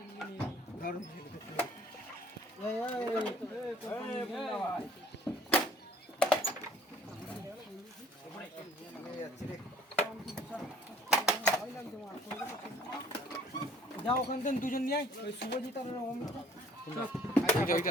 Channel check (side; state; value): both; normal; correlation 0.58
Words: যাও ওখান থেকে দুজন নিয়ে আয়, ওই শুভজিৎ আর অমিত।